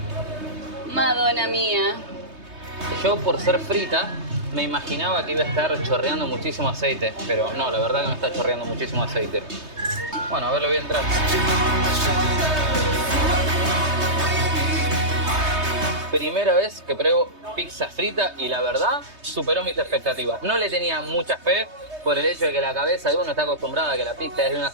Madonna mía. Yo, por ser frita, me imaginaba que iba a estar chorreando muchísimo aceite, pero no, la verdad que no está chorreando muchísimo aceite. Bueno, a ver, lo voy a entrar. Primera vez que pruebo pizza frita y la verdad superó mis expectativas. No le tenía mucha fe por el hecho de que la cabeza de uno está acostumbrada a que la pizza es de una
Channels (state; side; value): late; left; 3.2 ms